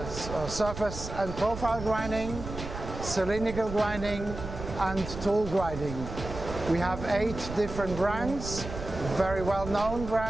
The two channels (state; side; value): noise; right; rumble, 9 dB below the sound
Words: surface and profile grinding, cylindrical grinding and tool grinding. We have 8 different brands, very well-known